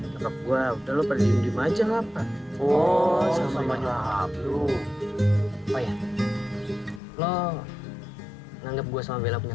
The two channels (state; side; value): drops out; right; at 7.0 s